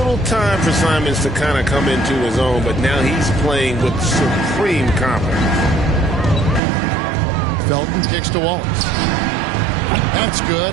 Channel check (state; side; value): drops out; left; at 6.6 s